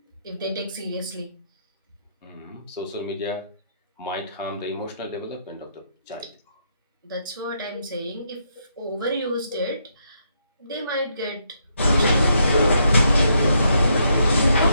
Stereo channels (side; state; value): both; inverted; correlation -0.76